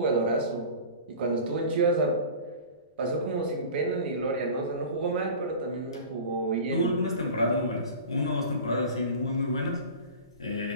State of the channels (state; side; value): inverted; both; correlation -0.37